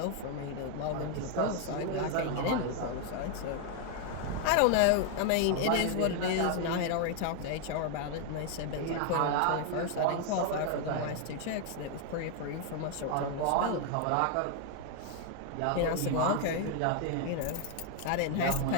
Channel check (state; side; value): different; both; correlation 0.00